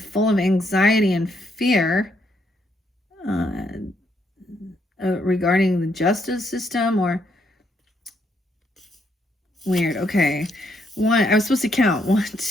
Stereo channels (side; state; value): both; normal; correlation 0.74